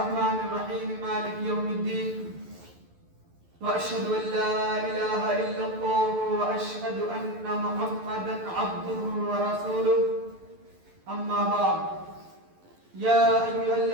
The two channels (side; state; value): left; late; 11 ms